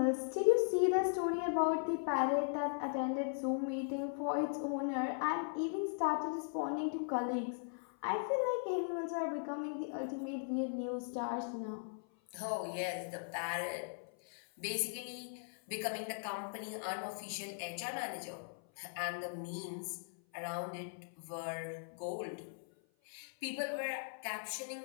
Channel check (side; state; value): right; silent; 52 dB below the other